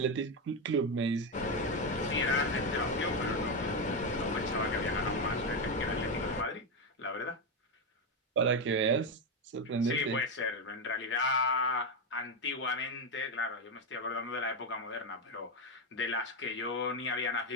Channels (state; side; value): normal; both; correlation 0.09